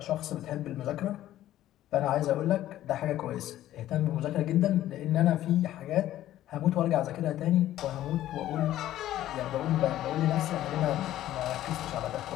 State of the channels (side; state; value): right; quieter; 13.5 dB